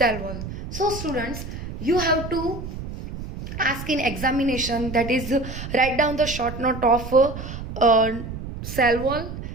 wall. So students, you have to ask in examination, that is write down the short note of cell wall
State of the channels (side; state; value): right; noise; rumble, 9 dB below the sound